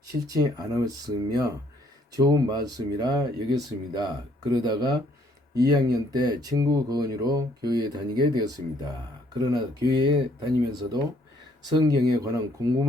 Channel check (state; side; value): normal; both; correlation 0.65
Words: 싫지 않았으며 좋은 말씀이라 여겼습니다. 그러다가 2학년 때 친구 거언으로 교회에 다니게 되었습니다. 그러나 교회에 다니면서도 성경에 관한